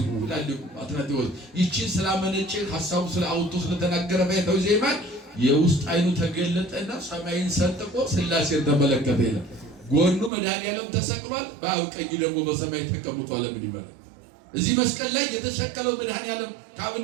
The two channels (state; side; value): drops out; left; at 10.3 s